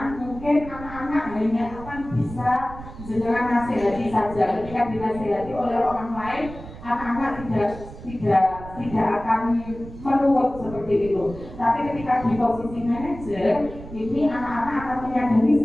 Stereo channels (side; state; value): right; noise; rumble, 14 dB below the sound